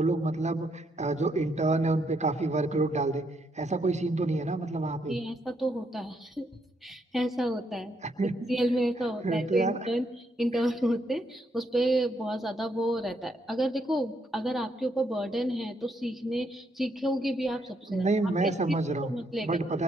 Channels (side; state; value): both; normal; correlation 0.75